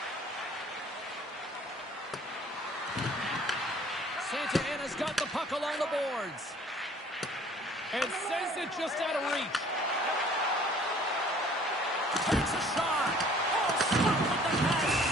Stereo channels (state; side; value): normal; both; correlation 0.54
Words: Santa Ana's got the puck along the boards. And sends it just out of reach. Takes a shot. Oh, stop with the pass.